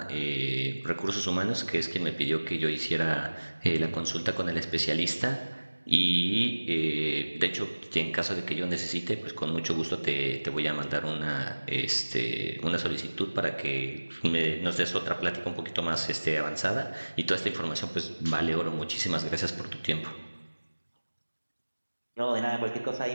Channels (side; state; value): both; inverted; correlation -1.00